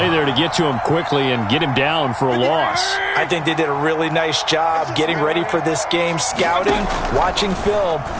there to get to him quickly and get him down for a loss. I think they did a really nice job getting ready for this game, scouting, watching film,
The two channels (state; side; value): identical; both; correlation 1.00